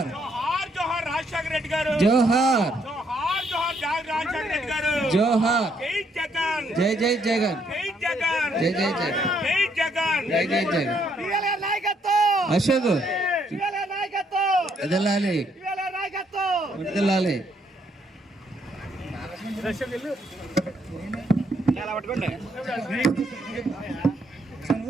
జోహార్ జోహార్ రాజశేఖర రెడ్డి గారు, జోహార్ జోహార్ జోహార్ రాజశేఖర రెడ్డి గారు, జోహార్ జై జగన్, జై జై జగన్, జై జగన్, జై జై జగన్, జై జగన్, జై జై జగన్. అశోక్ ఎదలాలి, ఎదలాలి.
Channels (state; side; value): normal; both; correlation 0.72